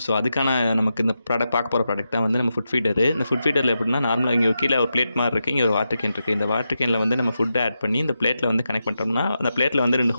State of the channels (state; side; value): inverted; both; correlation -0.88